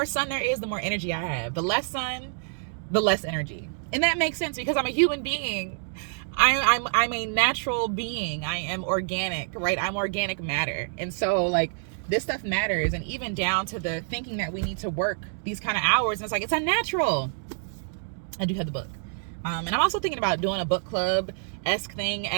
sun there is, the more energy I have. The less sun, the less energy. And that makes sense because I'm a human being. I'm a natural being. I am organic, right? I'm organic matter. And so like this stuff matters. And even down to the thinking that we need to work these kind of hours. And it's like, it's unnatural. I do have the book. And I'm also thinking about doing a book club-esque thing,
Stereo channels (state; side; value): silent; left; digital silence